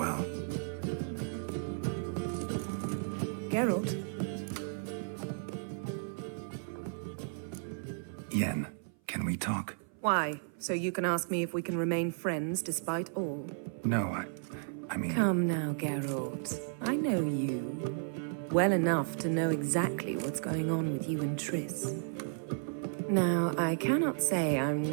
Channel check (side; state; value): left; silent; 55 dB below the other